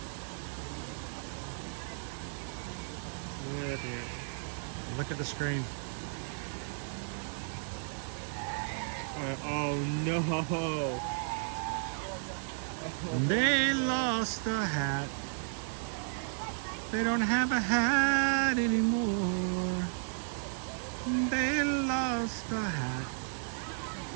Look at the screen. Oh no. They lost a hat. They don't have a hat anymore. They lost a hat.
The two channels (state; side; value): silent; left; digital silence